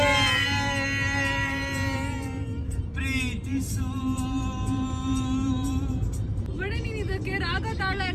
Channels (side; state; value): both; identical; correlation 1.00